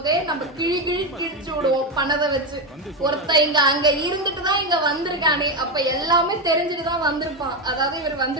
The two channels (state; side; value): normal; both; correlation 0.11